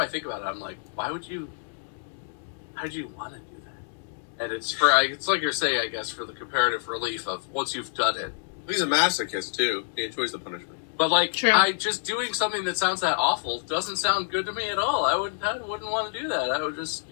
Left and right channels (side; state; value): right; silent; digital silence